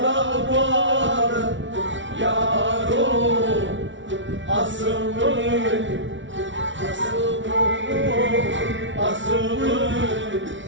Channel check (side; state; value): left; late; 0.55 ms